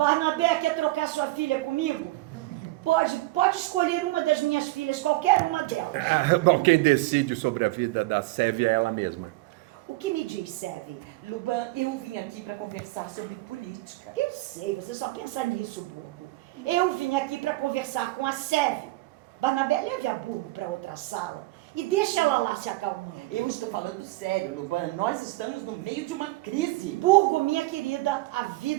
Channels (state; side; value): quieter; left; 20.3 dB